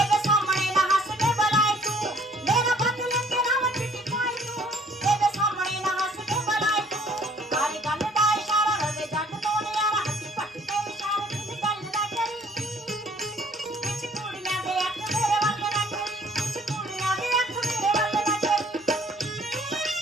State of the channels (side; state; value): both; normal; correlation 0.59